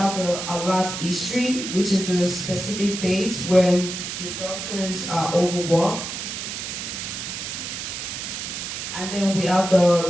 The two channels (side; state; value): right; noise; hiss, 6 dB below the sound